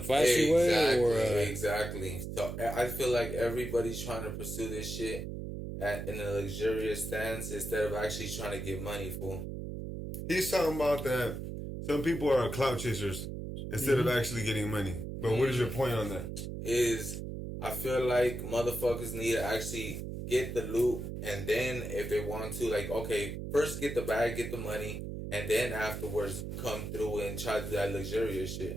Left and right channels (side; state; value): right; noise; hum, 6 dB below the sound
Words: flashy way, or exactly. So I feel like everybody's trying to pursue this shit in a luxurious stance instead of actually trying to get money, fool. He's talking about that some people are clout chasers instead of actually getting money. But what is your point on that? Is I feel like motherfuckers need to actually get the loot, and then if they want to, like, okay, first get the bag, get the money, and then afterwards come through and try to do that luxurious